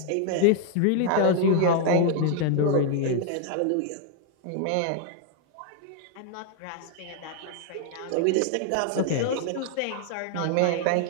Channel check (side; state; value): both; different; correlation 0.00